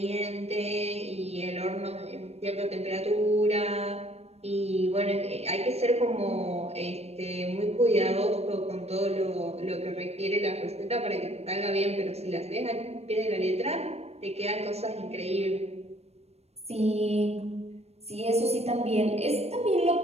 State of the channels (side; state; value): left; late; 0.31 ms